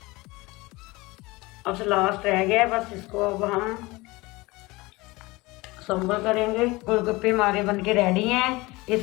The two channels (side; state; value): right; quieter; 22.2 dB